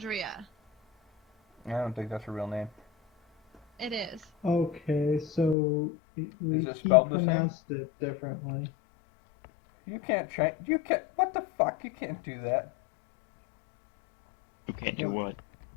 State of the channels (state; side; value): drops out; right; at 5.6 s